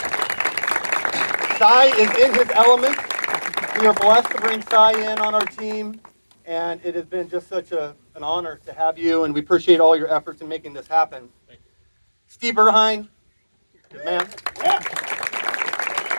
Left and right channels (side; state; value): both; inverted; correlation -1.00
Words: Cy is in his element. We are blessed to bring Cy in on our team. And it has been just such an honor to have you, and we appreciate all your efforts in making this happen. Steve Erhine, good man. Yeah.